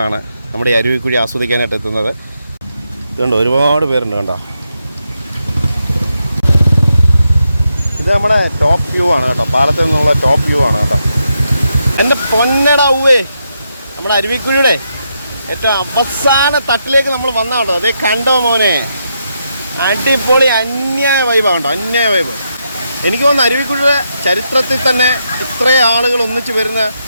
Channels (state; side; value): inverted; both; correlation -0.82